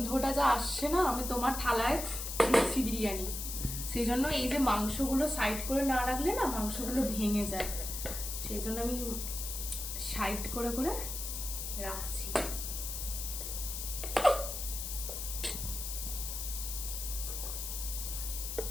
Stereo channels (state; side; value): noise; left; hiss, 5 dB below the sound